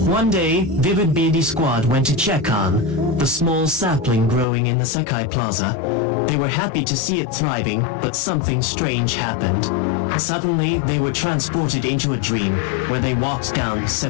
One day, Vivid BD Squad went to check on the small sapling growing in the Sekai Plaza. They were happy to see it thriving, but something strange happened. Suddenly, they were transported into a dream, where they walked down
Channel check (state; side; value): drops out; right; at 4.5 s